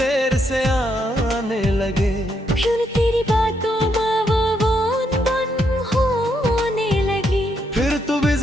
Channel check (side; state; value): both; normal; correlation 0.77